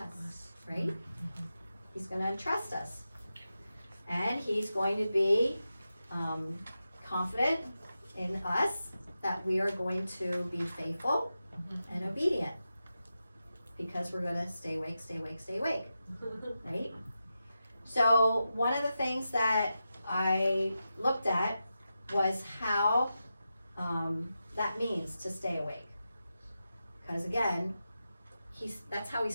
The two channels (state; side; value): inverted; both; correlation -0.90